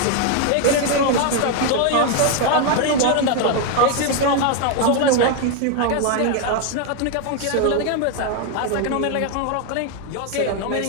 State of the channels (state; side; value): different; both; correlation 0.01